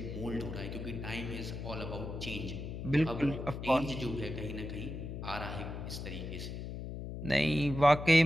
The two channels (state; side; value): noise; left; hum, 7 dB below the sound